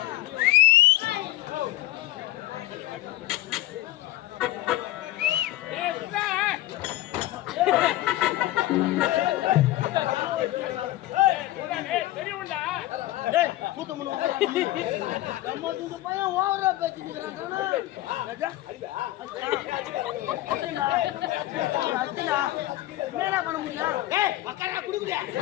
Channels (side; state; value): right; quieter; 15.9 dB